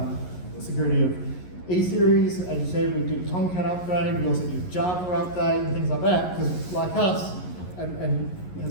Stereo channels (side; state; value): right; late; 11 ms